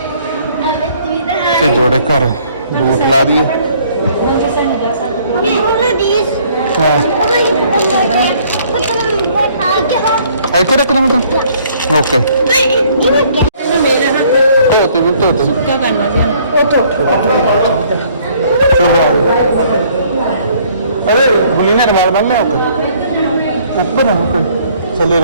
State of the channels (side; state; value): both; inverted; correlation -0.60